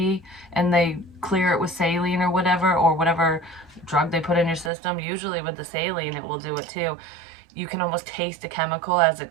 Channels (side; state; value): left; drops out; at 4.7 s